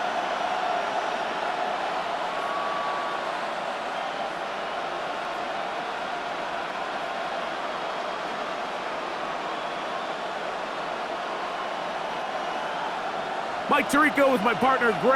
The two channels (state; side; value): identical; both; correlation 1.00